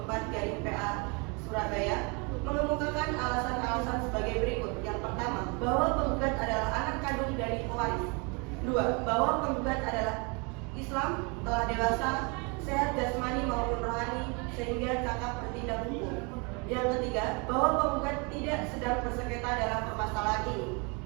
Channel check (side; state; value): left; quieter; 31.4 dB